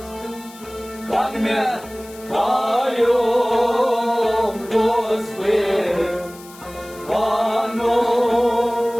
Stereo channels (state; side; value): noise; left; hiss, 20 dB below the sound